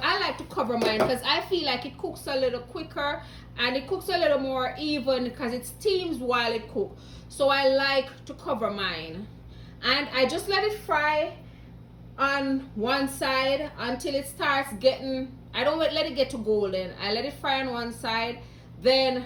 I like to cover mine because I feel like it cooks a little quicker and it cooks a little more even because it steams while it cooks. So I like to cover mine. And I just let it fry on one side until it starts getting, I don't let it get to golden. I let it fry on one side, then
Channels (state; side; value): identical; both; correlation 1.00